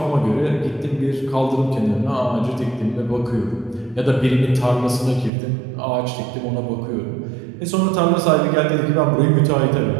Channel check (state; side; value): drops out; left; at 5.3 s